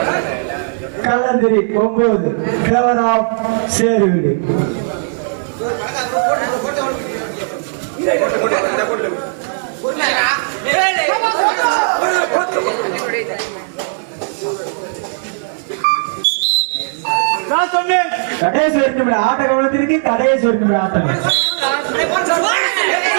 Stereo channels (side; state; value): left; silent; 69 dB below the other